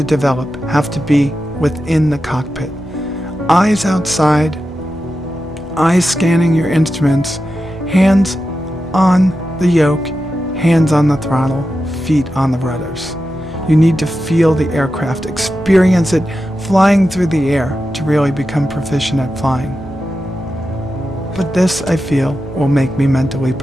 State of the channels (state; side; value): normal; both; correlation 0.91